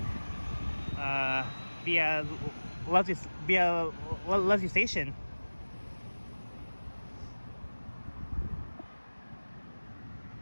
via Leslie Station.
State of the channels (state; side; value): inverted; both; correlation -1.00